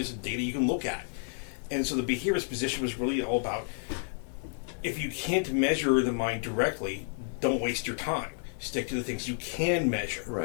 and data you can look at. And so the behaviorist position was really all about, if you can't measure the mind directly, don't waste your time. Stick to the things you can measure.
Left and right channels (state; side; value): silent; right; 57 dB below the other